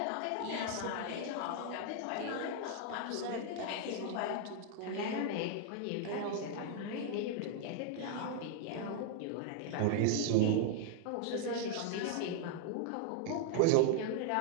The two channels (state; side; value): different; both; correlation 0.00